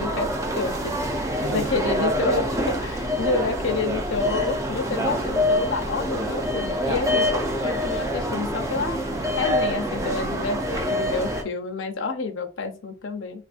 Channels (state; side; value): normal; both; correlation 0.19